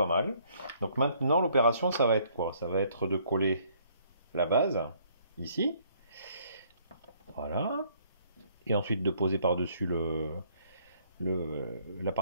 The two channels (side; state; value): both; inverted; correlation -0.64